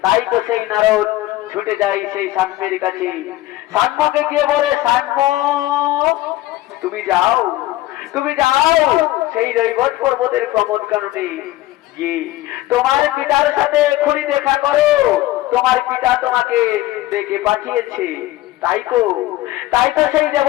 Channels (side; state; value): right; quieter; 16.4 dB